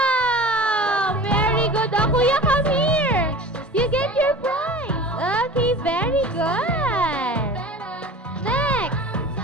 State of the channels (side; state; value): both; normal; correlation 0.38